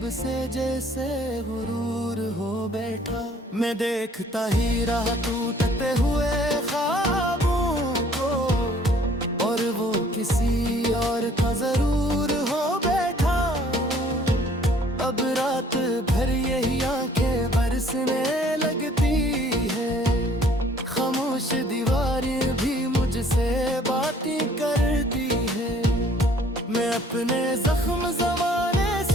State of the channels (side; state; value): both; normal; correlation 0.58